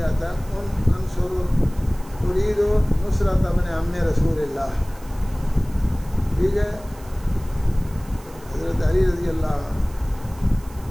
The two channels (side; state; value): right; noise; hiss, 23 dB below the sound